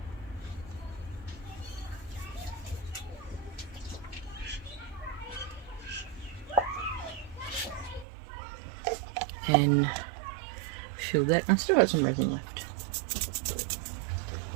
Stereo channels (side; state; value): left; drops out; at 8.1 s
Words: And fill that. I've still got some resin left.